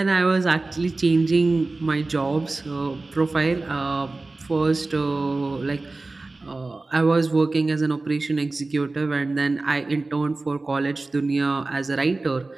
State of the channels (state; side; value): quieter; left; 3.3 dB